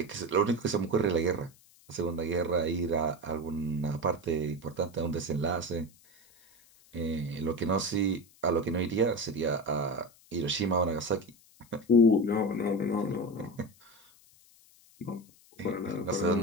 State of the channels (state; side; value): noise; left; hiss, 28 dB below the sound